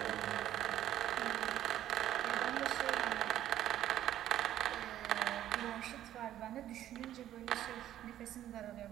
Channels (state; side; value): quieter; left; 12.2 dB